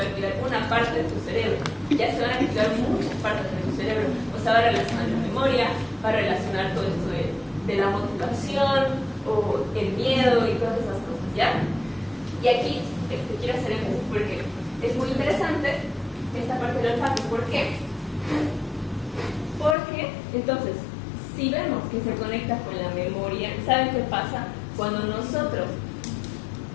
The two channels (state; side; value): drops out; right; at 19.8 s